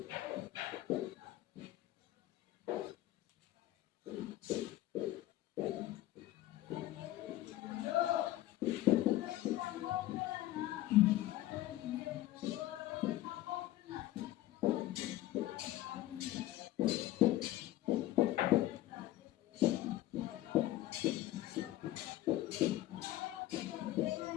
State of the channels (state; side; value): quieter; right; 15.2 dB